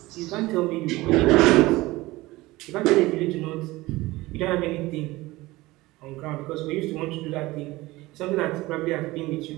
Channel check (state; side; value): quieter; left; 19.6 dB